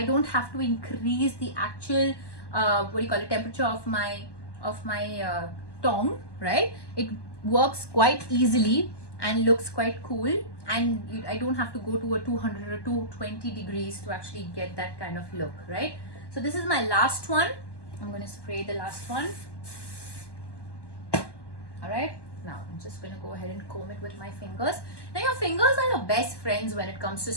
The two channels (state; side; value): late; right; 1.1 ms